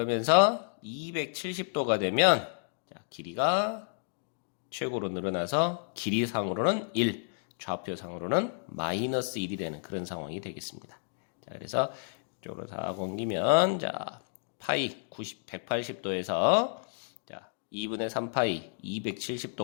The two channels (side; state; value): right; silent; digital silence